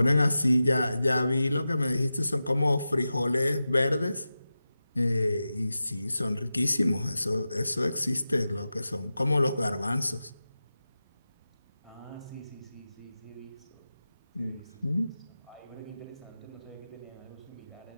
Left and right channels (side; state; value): both; inverted; correlation -0.93